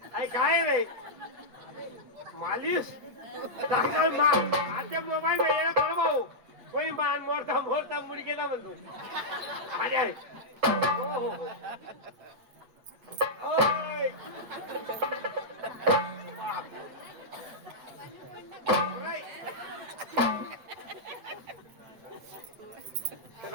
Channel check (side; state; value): left; late; 8.6 ms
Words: आई काय रे मालिश डॉक्टर आता मोबाईल में थोडं भाऊ कोणी मान मोरता मोरता मुडी गेला म्हणतो अरे आहे हो, हो, हो. ओय. ओय.